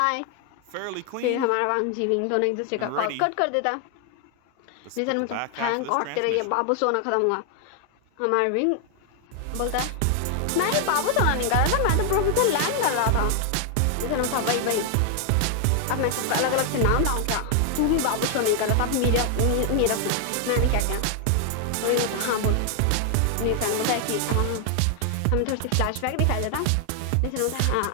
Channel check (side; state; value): both; different; correlation 0.00